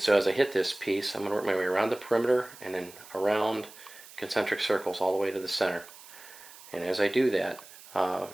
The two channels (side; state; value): right; noise; hiss, 19 dB below the sound